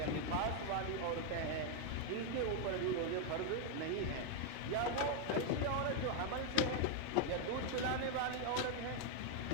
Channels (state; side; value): different; both; correlation 0.01